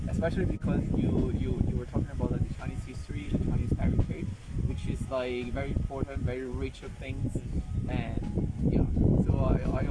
especially because you were talking about like, the Chinese history, the Chinese heritage, which is like very important, very rich of things, and yeah. So I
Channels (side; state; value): both; identical; correlation 1.00